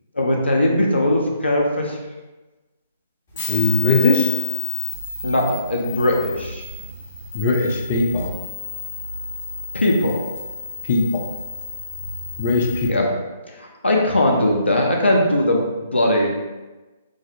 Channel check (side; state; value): both; inverted; correlation -0.70